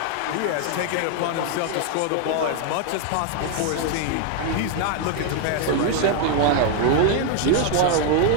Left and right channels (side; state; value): both; different; correlation 0.01